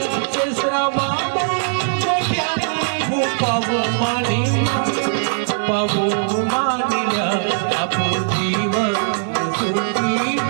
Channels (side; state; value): left; silent; digital silence